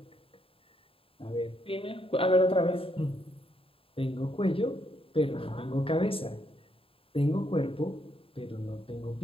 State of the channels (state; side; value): late; right; 0.27 ms